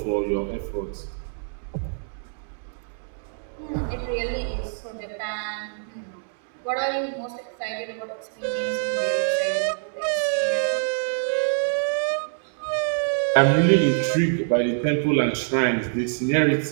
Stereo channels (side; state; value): left; silent; digital silence